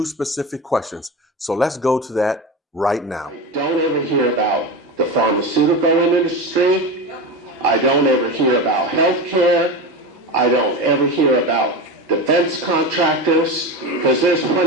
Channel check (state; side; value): normal; both; correlation 0.23